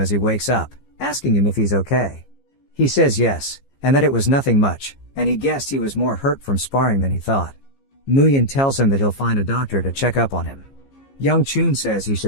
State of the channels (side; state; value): right; late; 15 ms